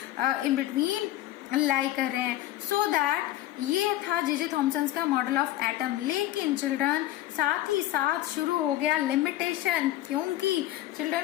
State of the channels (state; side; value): quieter; right; 14.6 dB